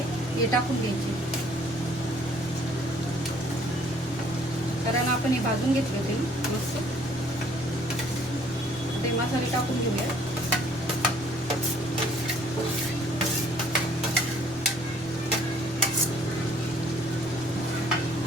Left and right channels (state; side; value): normal; both; correlation 0.60